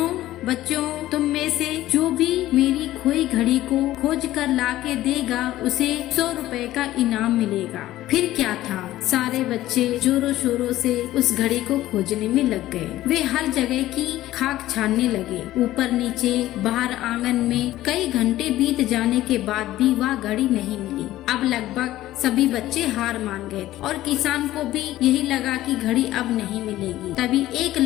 बच्चों, तुम में से जो भी मेरी खोई घड़ी को खोज कर ला के देगा उसे 100 रुपए का इनाम मिलेगा। फिर क्या था, सारे बच्चे जोरों शोरों से उस घड़ी को खोजने में लग गए। वे हर जगह की खाक छानने लगे, ऊपर नीचे बाहर आंगन में। कई घंटे बीत जाने के बाद भी वह घड़ी नहीं मिली। अब लगभग सभी बच्चे हार मान गए थे और किसान को भी यही लगा कि घड़ी अब नहीं मिलेगी। तभी एक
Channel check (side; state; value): right; quieter; 15.1 dB